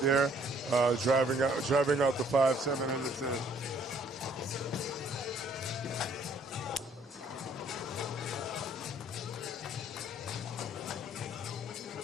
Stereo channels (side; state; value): both; normal; correlation 0.62